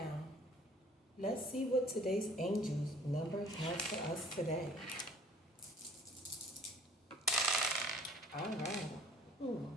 let's see what today's angels number has for us today. All right.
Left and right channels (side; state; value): both; normal; correlation 0.53